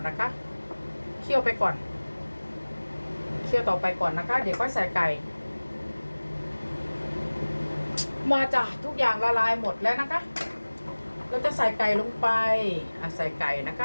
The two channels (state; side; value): inverted; both; correlation -1.00